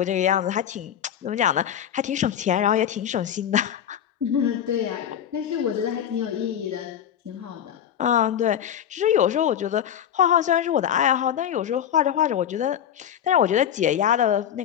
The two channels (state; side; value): quieter; right; 9.6 dB